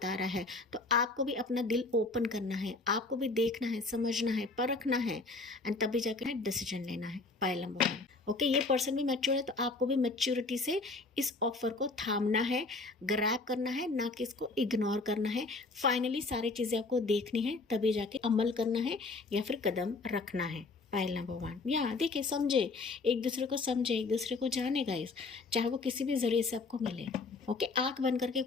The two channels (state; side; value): quieter; right; 3.6 dB